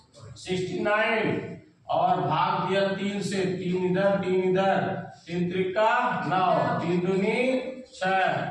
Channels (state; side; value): identical; both; correlation 1.00